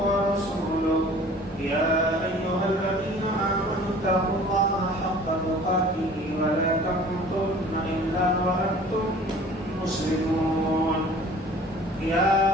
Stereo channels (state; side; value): normal; both; correlation 0.47